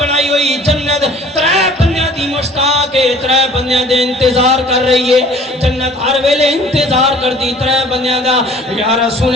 ہوئی جنت ترے بندیاں دی مشتاق ہے, ترے بندیاں دے انتظار کر رہی ہے. جنت ہر ویلے انتظار کرتی ترے بندیاں دا. یا رسول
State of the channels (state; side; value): normal; both; correlation 0.50